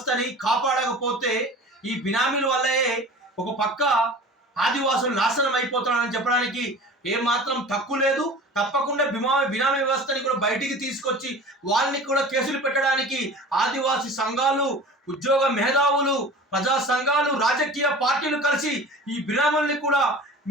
కాపాడకపోతే ఈ బినామీల వల్లే ఒక పక్క ఆదివాసులు నాశనం అయిపోతున్నారని చెప్పడానికి ఏమాత్రం తక్కువ లేదు. తప్పకుండా బినామీ వ్యవస్థని కూడా బయటికి తీసుకొచ్చి వాళ్ళని కూడా కేసులు పెట్టడానికి ఆదివాసీ సంఘాలు, ఉద్యోగ మేధావులు, ప్రజా సంఘాలు, రాజకీయ పార్టీలు కలిసి ఈ బినామీల్ని కూడా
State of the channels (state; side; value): normal; both; correlation 0.39